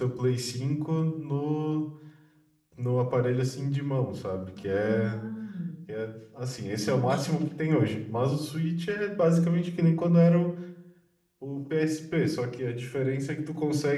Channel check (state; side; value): identical; both; correlation 1.00